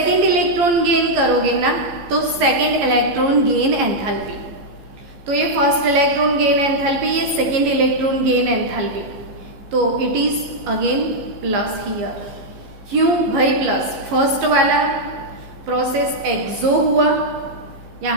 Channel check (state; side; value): late; left; 14 ms